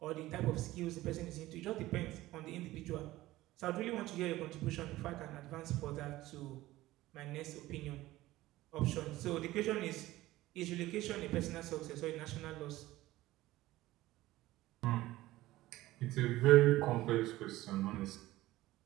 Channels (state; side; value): quieter; left; 17.0 dB